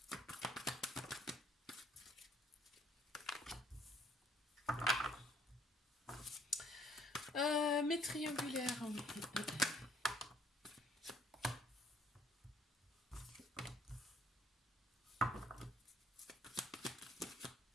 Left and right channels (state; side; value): normal; both; correlation 0.62